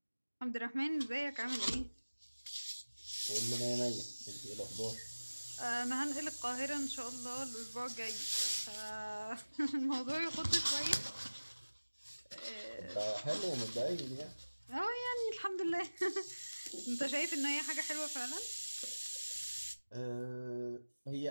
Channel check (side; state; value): both; inverted; correlation -1.00